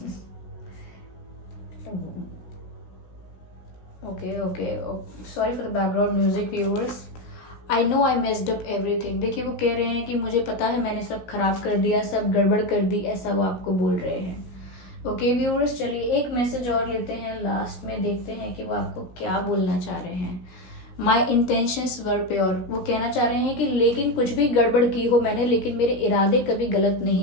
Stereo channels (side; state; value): right; late; 17 ms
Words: okay, sorry for the background music viewers, I know I messed up everything। देखिए वो कह रहे हैं कि मुझे पता है मैंने सब खराब कर दिया, सब गड़बड़ कर दी, ऐसा वो आपको बोल रहे हैं। ओके व्यूअर्स, चलिए एक मैसेज और लेते हैं, लास्ट में देखते हैं कि वो आपको क्या बोलना चाह रहे हैं। माई इंटेंशंस वर प्योर, वो कहना चाह रहे हैं कि लेकिन कुछ भी गड़बड़ की हो मैंने, लेकिन मेरे इरादे कभी गलत